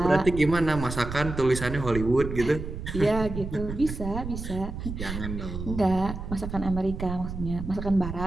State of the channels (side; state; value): right; noise; rumble, 7 dB below the sound